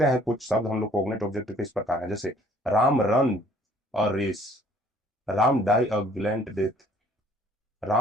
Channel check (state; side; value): normal; both; correlation 0.58